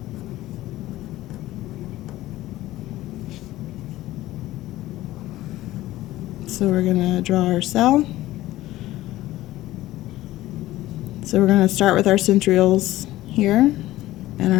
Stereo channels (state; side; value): quieter; right; 16.1 dB